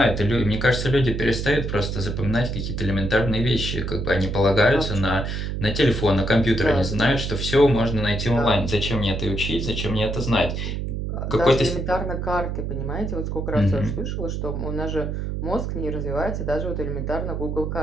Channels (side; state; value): right; noise; hum, 3 dB below the sound